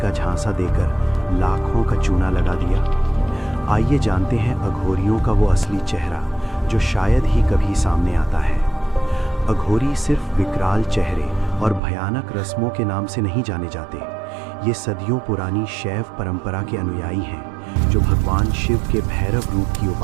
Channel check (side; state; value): left; drops out; at 11.8 s